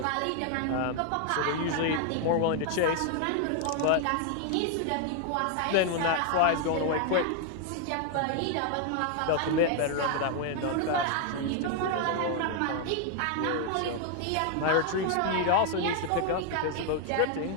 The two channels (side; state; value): both; different; correlation 0.00